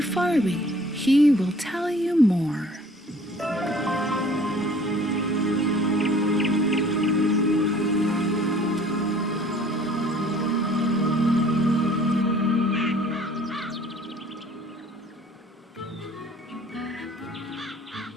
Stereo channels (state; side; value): normal; both; correlation 0.53